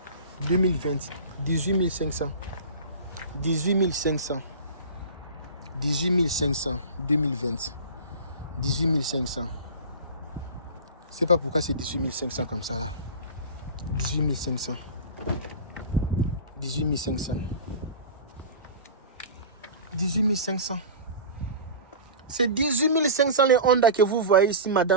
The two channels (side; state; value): both; inverted; correlation -0.32